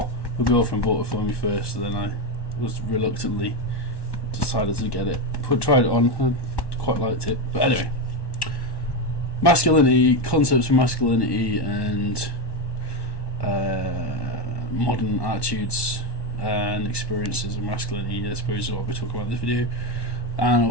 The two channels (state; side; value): late; right; 1.1 ms